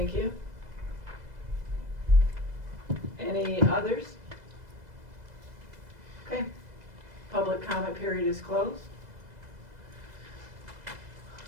you. Any others? Okay. Public comment period is closed.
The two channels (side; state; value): left; late; 2.0 ms